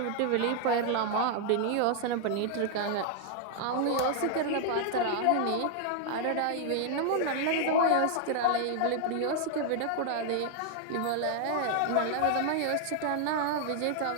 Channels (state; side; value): different; both; correlation 0.00